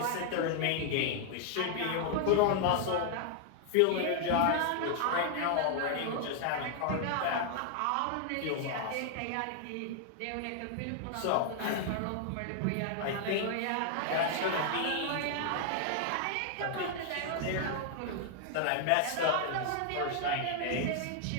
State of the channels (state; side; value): different; both; correlation 0.00